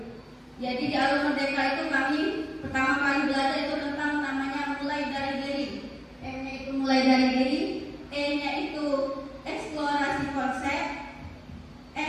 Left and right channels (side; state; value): both; identical; correlation 1.00